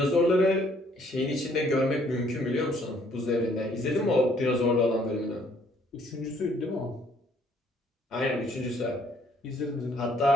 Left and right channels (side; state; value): both; normal; correlation 0.64